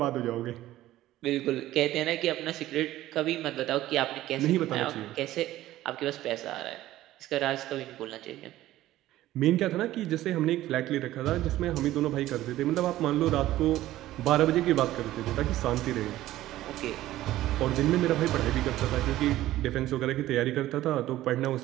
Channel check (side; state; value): left; quieter; 14.9 dB